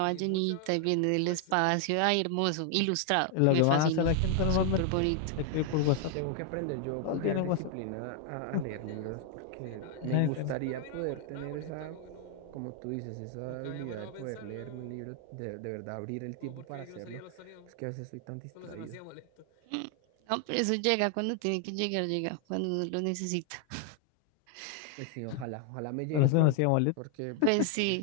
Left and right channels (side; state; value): both; different; correlation 0.00